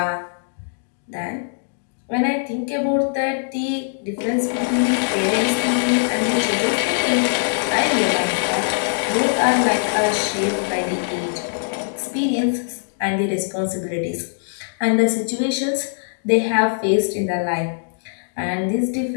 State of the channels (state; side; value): silent; right; digital silence